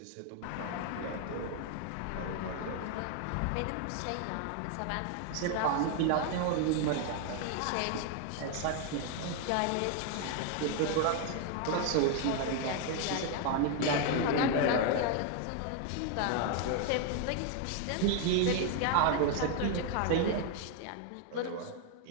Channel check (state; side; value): different; both; correlation 0.00